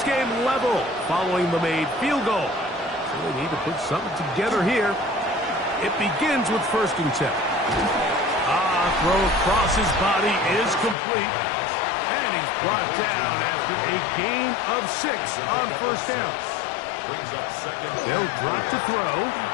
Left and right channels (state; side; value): drops out; right; at 11.0 s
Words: game level following the made field goal. So they need to put something together here. It begins with 1st and 10. Throw across his body is complete. And he's brought down after a gain of 6 on 1st down. Brings up 2nd. They'll drop to throw.